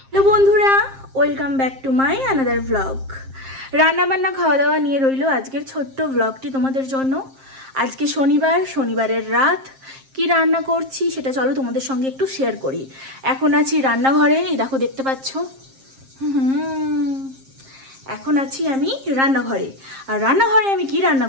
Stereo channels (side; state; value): left; late; 7.5 ms